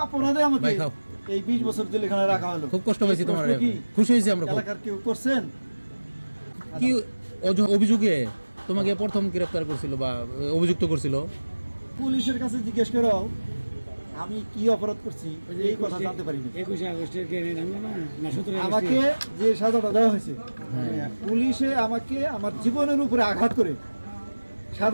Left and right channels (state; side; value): inverted; both; correlation -1.00